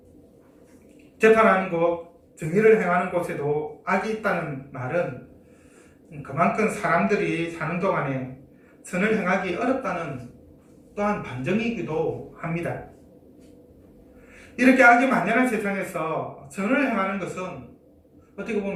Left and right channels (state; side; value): identical; both; correlation 1.00